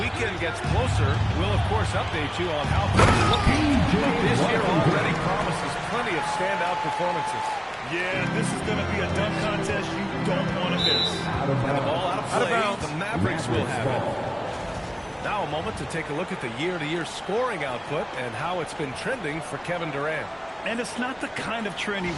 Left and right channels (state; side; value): identical; both; correlation 1.00